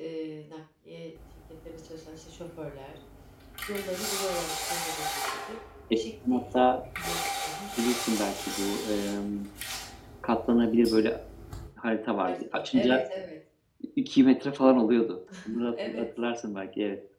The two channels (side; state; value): both; identical; correlation 1.00